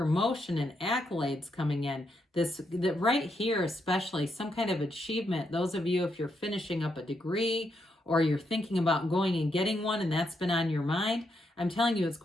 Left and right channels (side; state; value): both; normal; correlation 0.80